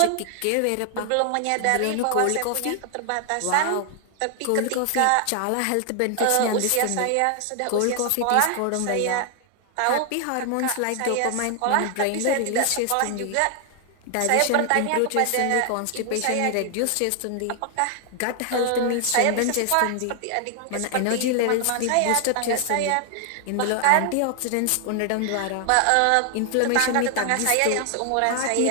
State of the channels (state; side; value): different; both; correlation 0.00